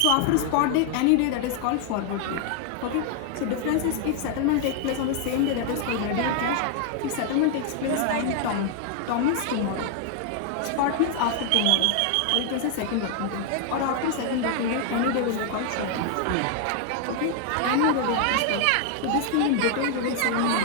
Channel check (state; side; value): different; both; correlation 0.00